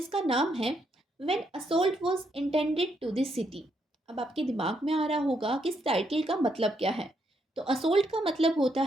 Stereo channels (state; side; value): normal; both; correlation 0.76